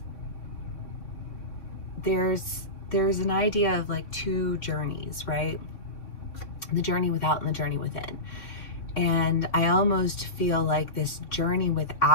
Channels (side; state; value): right; late; 3.6 ms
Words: there's an idea of like two journeys, right? The journey without and the journey within. And I almost feel like this journey